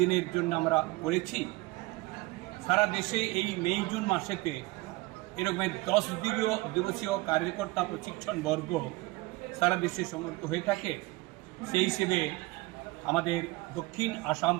জন্য আমরা করেছি। সারা দেশে এই মে জুন মাসেতে এরকম 10 দিবসীয় কার্যকর্তা প্রশিক্ষণ বর্গ সারা দেশে সংগঠিত হয়ে থাকে। সেই হিসেবে আমাদের দক্ষিণ আসাম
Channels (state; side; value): quieter; left; 21.7 dB